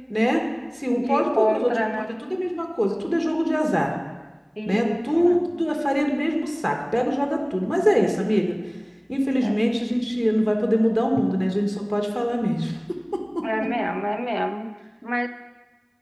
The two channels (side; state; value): both; identical; correlation 1.00